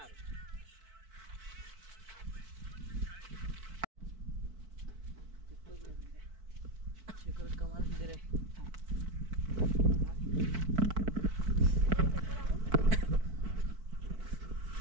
कमाल सुंदर आहे.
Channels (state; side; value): late; left; 4.5 ms